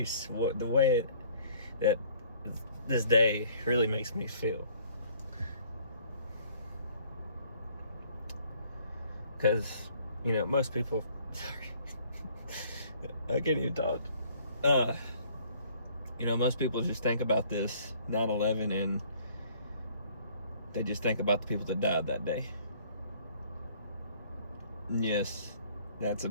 the way that this day really makes me feel, because most people sorry I can't even talk. Most people just think about this 9/11 and they just think about the people that died that day. And yes, that's a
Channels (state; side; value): inverted; both; correlation -0.58